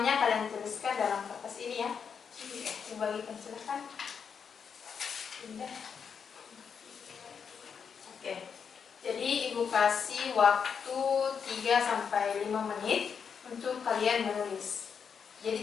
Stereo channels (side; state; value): right; quieter; 6.6 dB